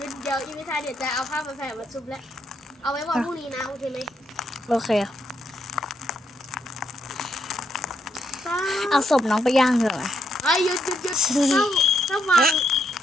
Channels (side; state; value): both; normal; correlation 0.78